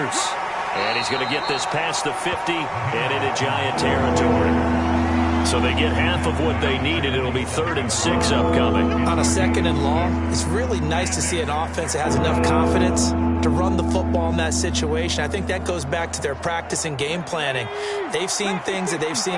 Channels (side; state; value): both; identical; correlation 1.00